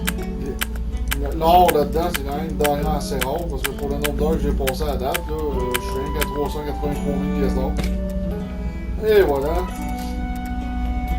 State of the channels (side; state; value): both; identical; correlation 1.00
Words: L'or là-dedans, c'est quand même une denrée assez rare parce que pour le nombre d'heures que j'ai passé à date, là, je suis rien qu'à 383 000 pièces d'or. Et voilà.